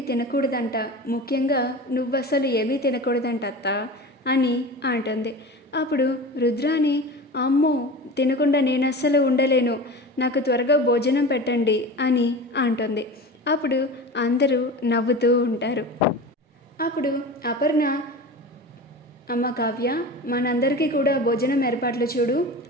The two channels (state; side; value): normal; both; correlation 0.32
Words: తినకూడదంట, ముఖ్యంగా నువ్వసలు ఏమీ తినకూడదంట అత్త అని అంటుంది. అప్పుడు రుద్రాని, అమ్మో తినకుండా నేను అస్సలు ఉండలేను, నాకు త్వరగా భోజనం పెట్టండి అని అంటుంది. అప్పుడు అందరూ నవ్వుతూ ఉంటారు. అప్పుడు అపర్ణ, అమ్మ కావ్య మనందరికీ కూడా భోజనం ఏర్పాట్లు చూడు